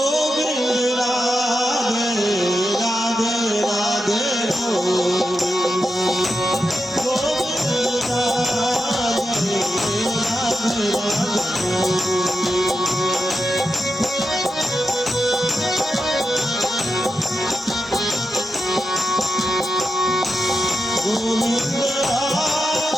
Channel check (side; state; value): both; normal; correlation 0.88